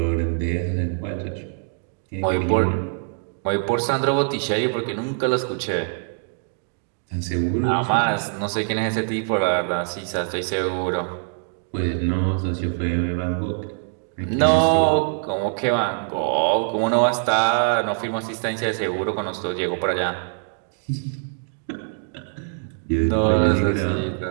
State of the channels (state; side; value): silent; left; digital silence